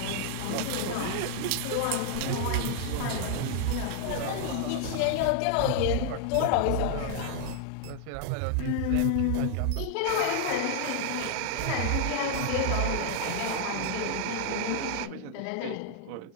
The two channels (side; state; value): both; different; correlation 0.00